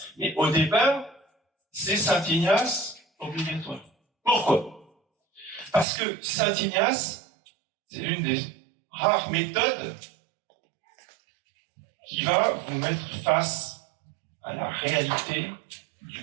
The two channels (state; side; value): drops out; left; at 5.9 s